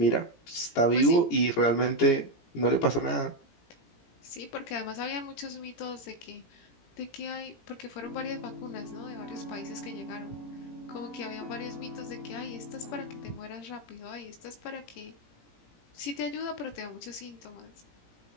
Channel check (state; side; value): late; right; 17 ms